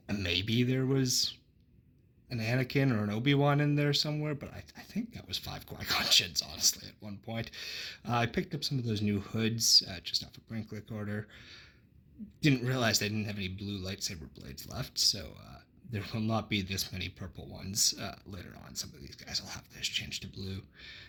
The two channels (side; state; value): both; identical; correlation 1.00